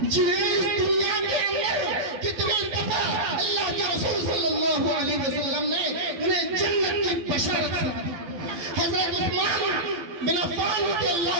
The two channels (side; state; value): left; late; 12 ms